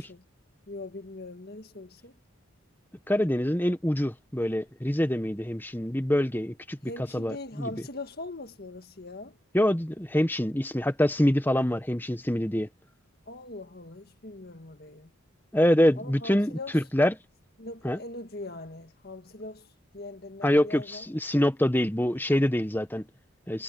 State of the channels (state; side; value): normal; both; correlation 0.91